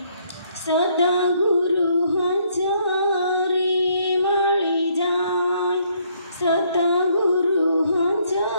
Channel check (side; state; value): both; inverted; correlation -0.68